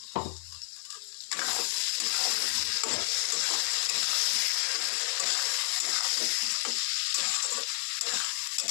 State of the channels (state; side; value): silent; right; 57 dB below the other